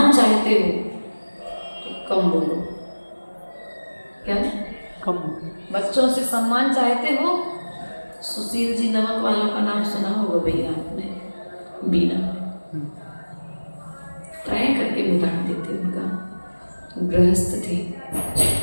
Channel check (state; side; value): inverted; both; correlation -1.00